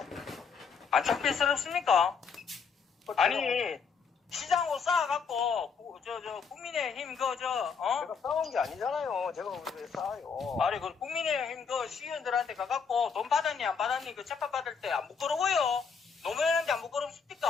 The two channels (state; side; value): quieter; right; 5.9 dB